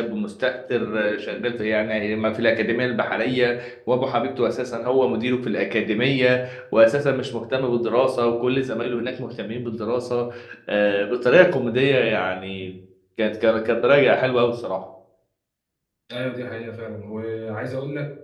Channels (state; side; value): identical; both; correlation 1.00